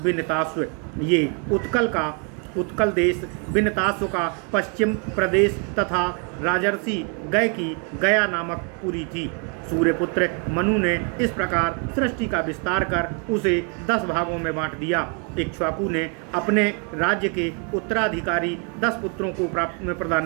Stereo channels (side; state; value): left; quieter; 38.2 dB